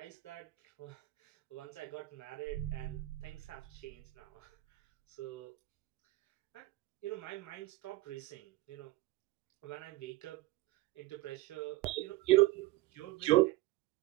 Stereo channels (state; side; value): quieter; left; 18.9 dB